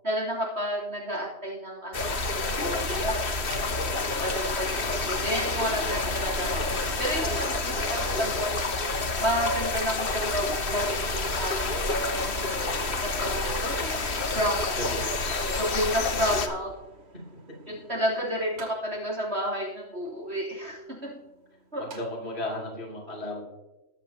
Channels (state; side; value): late; left; 3.1 ms